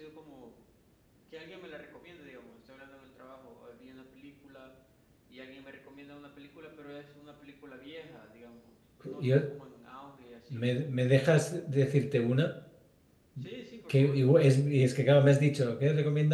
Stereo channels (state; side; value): identical; both; correlation 1.00